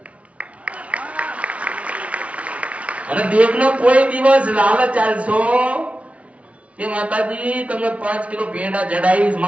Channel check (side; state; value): left; late; 0.064 ms